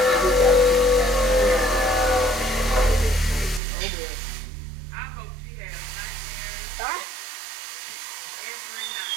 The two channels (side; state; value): left; drops out; at 3.6 s